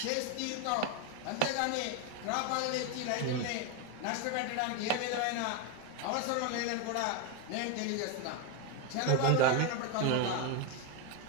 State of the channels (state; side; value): different; both; correlation 0.02